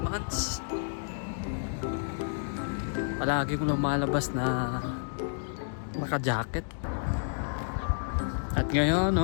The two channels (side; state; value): right; silent; digital silence